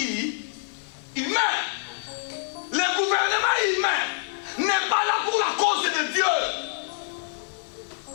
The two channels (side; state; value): right; silent; 61 dB below the other